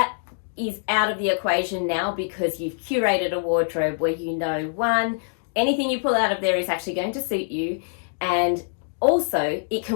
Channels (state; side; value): silent; right; digital silence